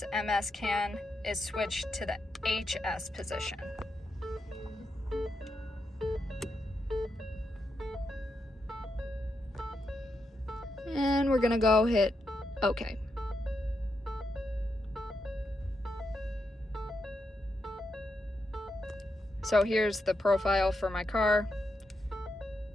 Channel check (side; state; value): both; normal; correlation 0.84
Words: CAN is switched to the HS position. And we're gonna go hit OK. So here's the profile for my car.